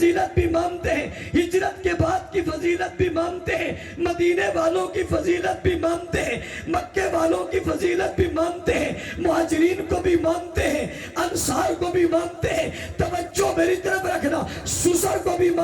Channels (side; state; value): both; identical; correlation 1.00